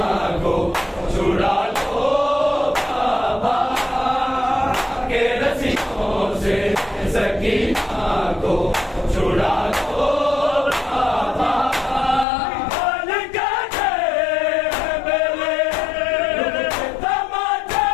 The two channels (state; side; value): drops out; right; at 12.2 s